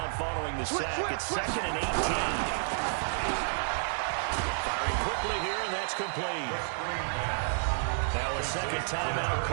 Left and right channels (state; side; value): silent; left; 57 dB below the other